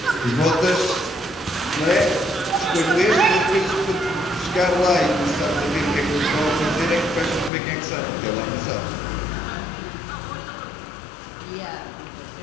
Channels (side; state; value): right; drops out; at 7.5 s